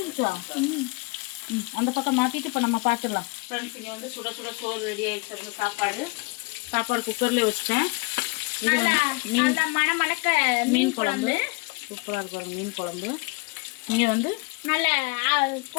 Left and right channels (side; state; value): right; quieter; 28.8 dB